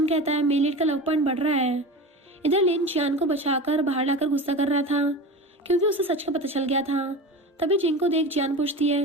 कहता है मेलिट का लव पॉइंट बढ़ रहा है। इधर लिन जियान को बचाकर बाहर लाकर गुस्सा कर रहा था, क्योंकि उसे सच का पता चल गया था। तभी जिंग को देख जियान पूछती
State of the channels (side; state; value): both; normal; correlation 0.30